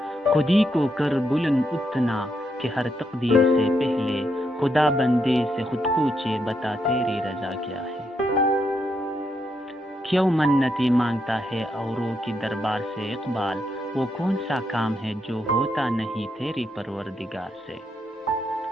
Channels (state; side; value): normal; both; correlation 0.79